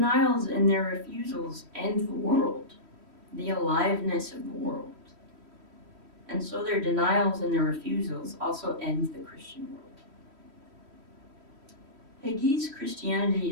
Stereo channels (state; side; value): late; left; 3.1 ms